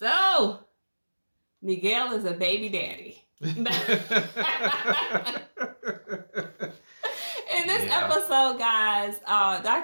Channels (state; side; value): inverted; both; correlation -1.00